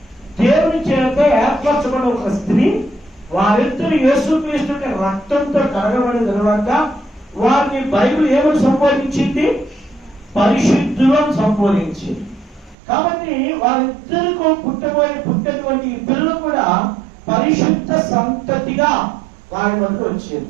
దేవుని చేత ఏర్పరచబడిన ఒక స్త్రీ, వారిద్దరు యేసుక్రీస్తు రక్తంతో కడగబడిన తర్వాత వారిని బైబిల్ ఏమని సంబోధించింది? పరిశుద్ధులను సంబోధించింది. కాబట్టి వారిద్దరికి పుట్టినటువంటి పిల్లలు కూడా పరిశుద్ధ సంతతిగా వారి వద్ద వచ్చేది.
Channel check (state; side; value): drops out; left; at 12.8 s